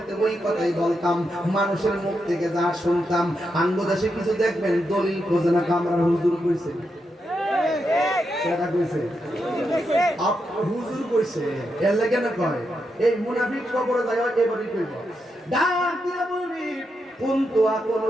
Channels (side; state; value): both; normal; correlation 0.84